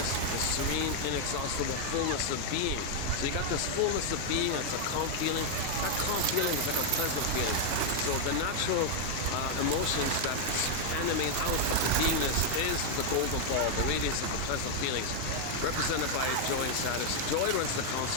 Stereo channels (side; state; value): both; different; correlation 0.00